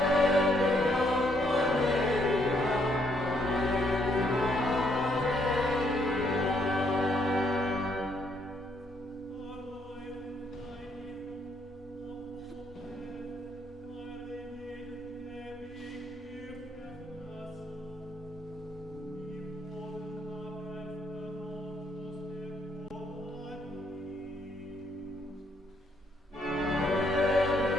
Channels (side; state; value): both; normal; correlation 0.71